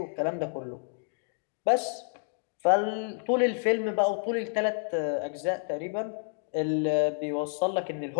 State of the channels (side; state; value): right; silent; digital silence